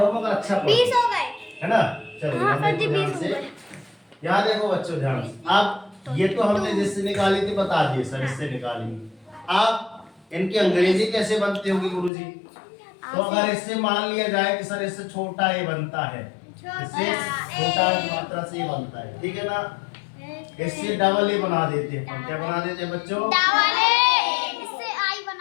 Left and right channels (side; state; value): right; drops out; at 12.1 s